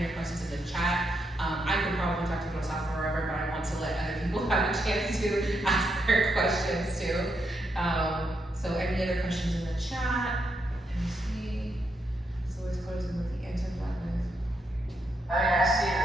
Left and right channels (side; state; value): both; normal; correlation 0.80